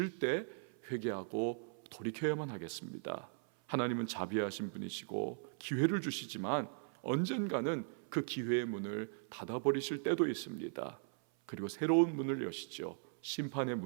때 회개하고 돌이켜야만 하겠습니다. 하나님은 자비하신 분이시고 기회를 주시지만 언젠가는 그 기회의 문을 닫아버리실 때도 있습니다. 그리고 새로운 문을 여시죠. 심판의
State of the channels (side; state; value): left; silent; 52 dB below the other